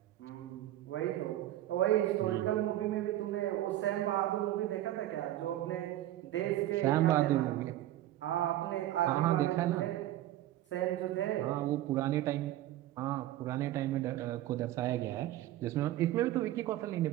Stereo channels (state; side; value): quieter; left; 14.2 dB